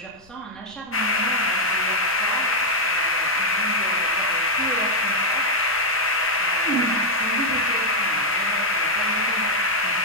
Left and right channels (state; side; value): noise; left; rumble, 29 dB below the sound